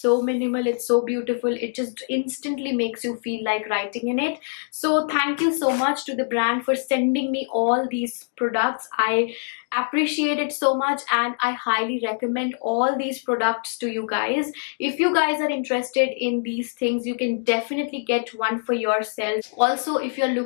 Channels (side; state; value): right; silent; 61 dB below the other